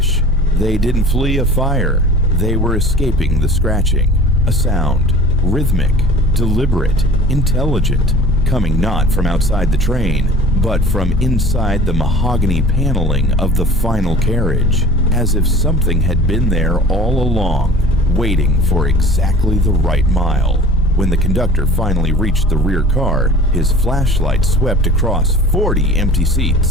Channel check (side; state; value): both; normal; correlation 0.42